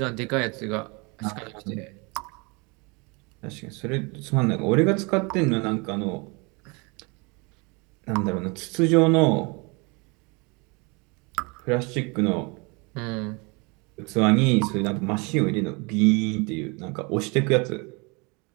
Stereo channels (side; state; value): left; quieter; 29.5 dB